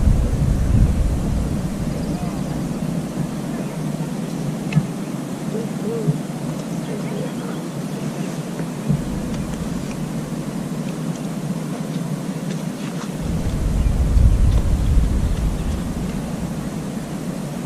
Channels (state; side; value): identical; both; correlation 1.00